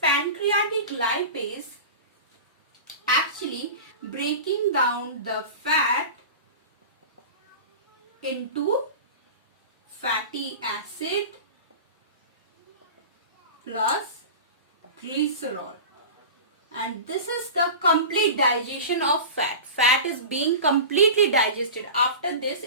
pancreatic lipase actually breaking down the fat into fatty acid plus glycerol, and this is the complete digestion of fat. Fat is being completely digested. After this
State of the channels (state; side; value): inverted; both; correlation -0.32